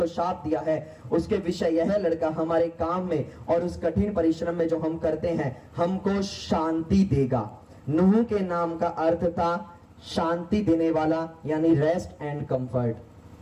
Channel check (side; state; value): both; identical; correlation 1.00